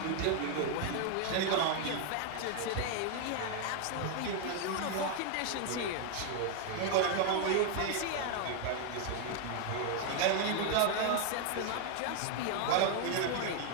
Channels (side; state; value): both; different; correlation 0.00